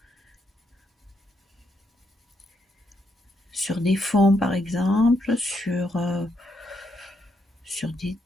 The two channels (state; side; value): normal; both; correlation 0.78